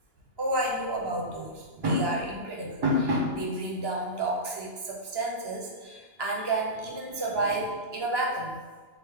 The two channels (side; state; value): right; late; 2.9 ms